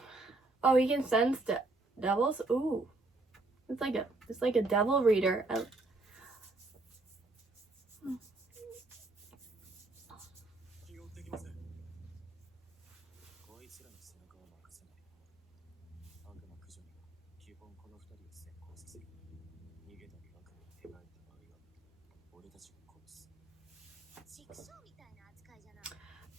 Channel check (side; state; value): left; quieter; 3.1 dB